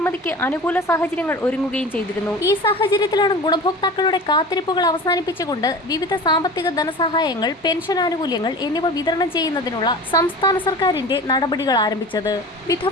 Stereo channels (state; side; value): normal; both; correlation 0.36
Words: അനുകൂല സാഹചര്യങ്ങൾ ഒരുങ്ങുകയും ചെയ്തിരുന്നു. ഈ സാഹചര്യത്തിലാണ് ഗുണഭോക്താക്കളുടെ കാത്തിരിപ്പുകൾ അവസാനിപ്പിച്ചുകൊണ്ട് വിവിധ സാമ്പത്തിക ധനസഹായങ്ങൾ, പെൻഷൻ ആനുകൂല്യങ്ങൾ എന്നിവ വിതരണം ചെയ്യുന്നതിനുള്ള സംസ്ഥാന സർക്കാരിന്റെ നടപടികൾ ആരംഭിച്ചത്.